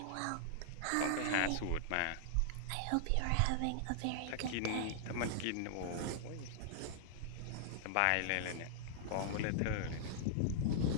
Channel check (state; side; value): different; both; correlation -0.01